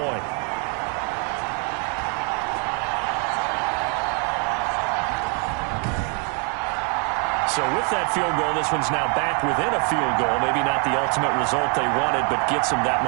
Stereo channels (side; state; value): left; quieter; 36.3 dB